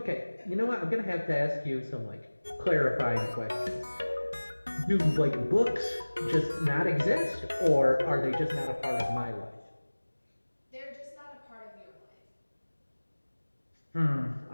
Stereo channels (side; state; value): both; inverted; correlation -1.00